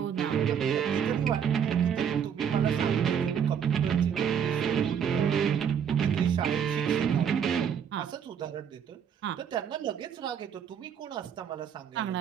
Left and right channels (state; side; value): quieter; left; 8.0 dB